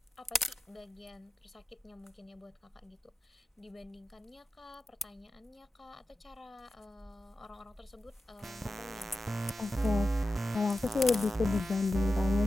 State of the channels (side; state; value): both; normal; correlation 0.92